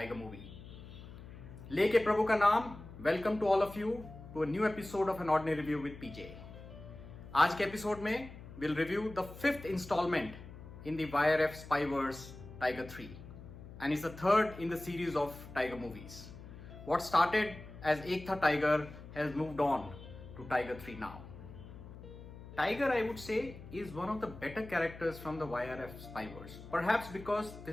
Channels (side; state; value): left; noise; hum, 15 dB below the sound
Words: movie. Leke Prabhu ka naam. Welcome to all of you to a new episode of An Ordinary Review with PJ. आज के episode में we'll review the 5th installment in the YRF Spyverse Tiger 3, and it's the 3rd in the series of tiger movies. What started as Ek Tha Tiger has moved on to Tiger 3 now. Tiger, I would say, is one of the better characters from the YRF Spyverse. Perhaps because